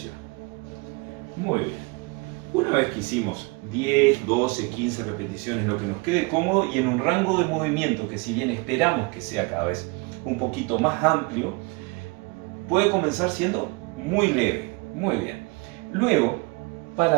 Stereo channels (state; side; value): quieter; left; 28.1 dB